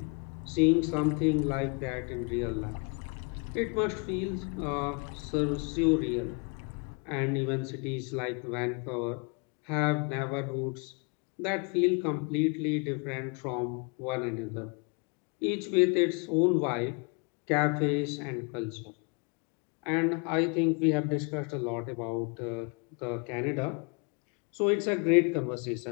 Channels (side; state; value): right; quieter; 34.0 dB